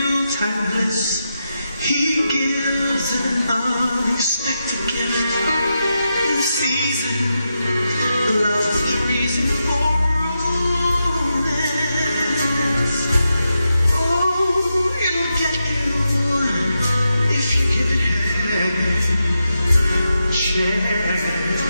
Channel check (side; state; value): both; inverted; correlation -0.87